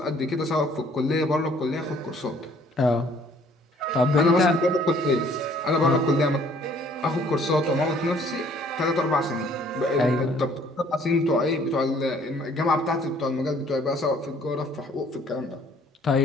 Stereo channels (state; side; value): normal; both; correlation 0.59